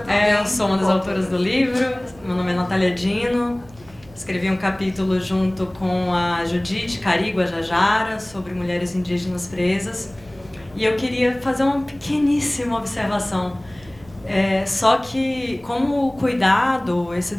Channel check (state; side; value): noise; right; hum, 24 dB below the sound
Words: Eu sou uma das autoras do livro, meu nome é Natália Dino, escrevi um capítulo junto com a Judite Carigo Jajara sobre mulheres indígenas presas, e eu queria fazer uma pequeníssima observação. Só que como o cuidado, esse